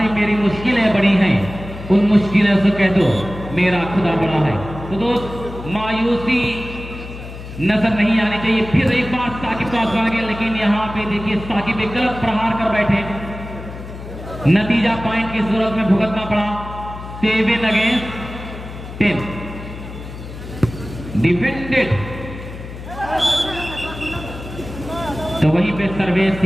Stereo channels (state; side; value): noise; left; hum, 12 dB below the sound